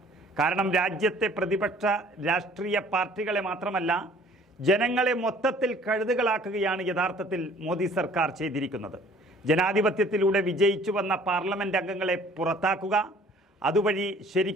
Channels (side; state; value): both; normal; correlation 0.54